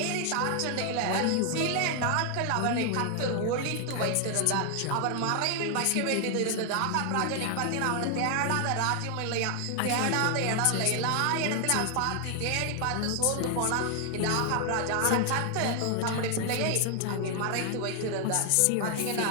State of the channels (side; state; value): both; different; correlation 0.00